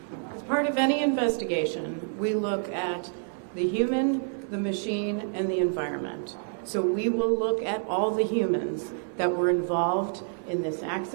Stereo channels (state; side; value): silent; left; digital silence